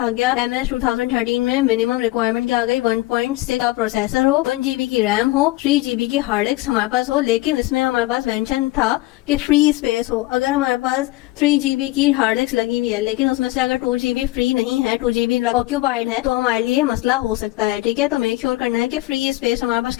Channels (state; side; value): quieter; right; 18.8 dB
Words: आ गया MS 2013 में मिनिमम रिक्वायरमेंट क्या आ गई? 1.6 का प्रोसेसर हो, 1 GB की रैम हो, 3 GB की हार्ड डिस्क हमारे पास हो, लेकिन इसमें हमारे पास मेंशन था कि फ्री स्पेस हो। अगर हमारे पास 3 GB की हार्ड डिस्क लगी हुई है लेकिन उसमें से अगर 2 GB फ्री नहीं है, 2 GB ऑक्यूपाइड है, तो हमारे लिए मसला हो सकता है, ठीक है। तो मेक श्योर करना है कि फ्री स्पेस हमारे पास